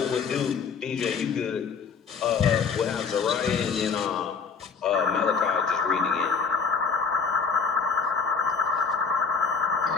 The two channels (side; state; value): right; quieter; 5.6 dB